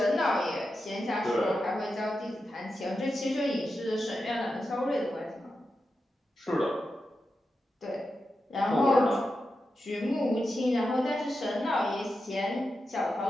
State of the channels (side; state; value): both; normal; correlation 0.89